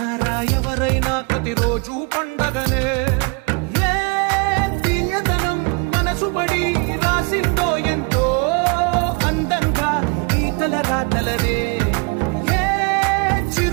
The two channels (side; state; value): left; quieter; 31.9 dB